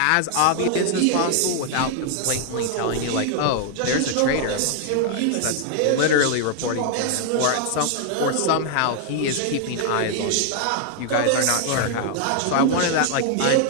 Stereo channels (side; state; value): both; different; correlation 0.00